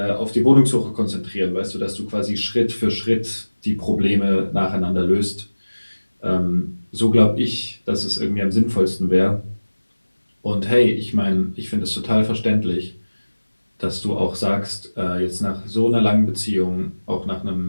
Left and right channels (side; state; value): both; inverted; correlation -1.00